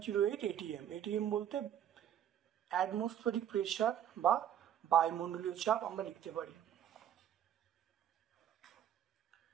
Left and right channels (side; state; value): left; quieter; 10.1 dB